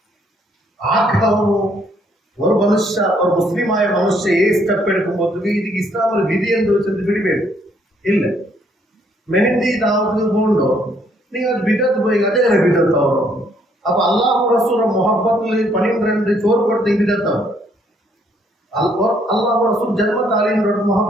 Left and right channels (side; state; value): both; normal; correlation 0.68